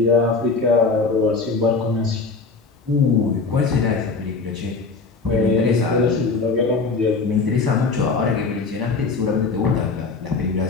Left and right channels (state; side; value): quieter; right; 4.3 dB